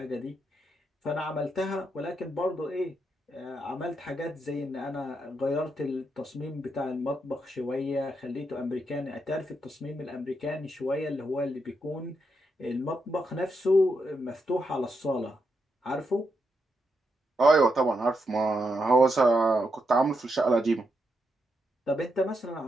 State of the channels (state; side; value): normal; both; correlation 0.82